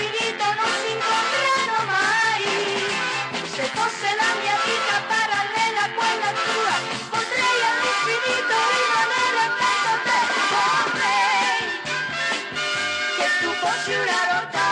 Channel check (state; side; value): identical; both; correlation 1.00